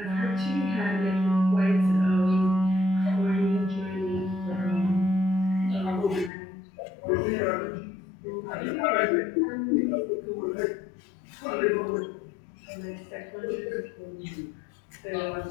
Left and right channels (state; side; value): drops out; right; at 6.3 s